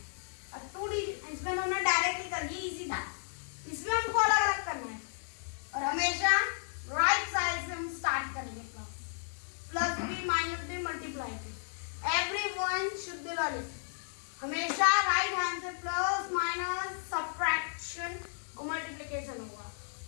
अब 2 डिजिट इसमें हमने डायरेक्टली कर ली, इजी था। इसमें हमको अलग अलग करना है और हमेशा राइट साइड से हम स्टार्ट करेंगे। Plus B minus B multiply B, everyone should learn it. हमेशा राइट हैंड से प्लस माइनस सब्ट्रैक्शन और मल्टीप्लिकेशन होगा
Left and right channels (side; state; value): right; silent; digital silence